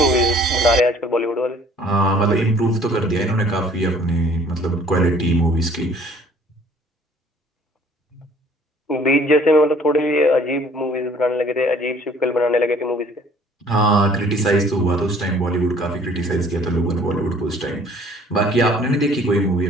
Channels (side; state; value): both; normal; correlation 0.55